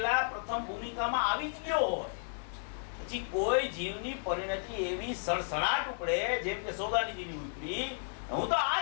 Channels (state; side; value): silent; right; 55 dB below the other